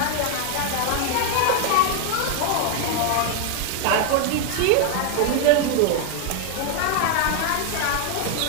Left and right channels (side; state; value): both; different; correlation 0.01